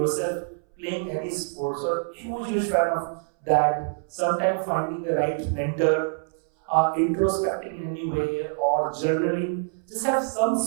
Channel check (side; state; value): left; silent; 61 dB below the other